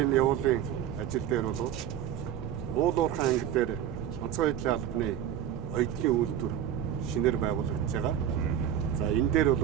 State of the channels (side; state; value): left; quieter; 10.2 dB